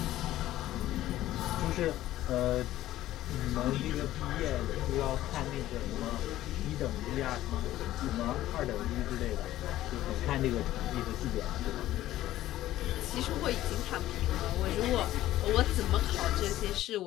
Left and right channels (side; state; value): right; quieter; 14.5 dB